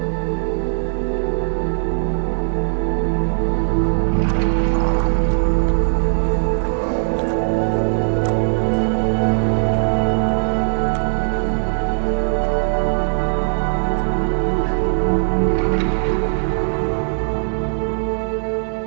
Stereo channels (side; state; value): left; silent; digital silence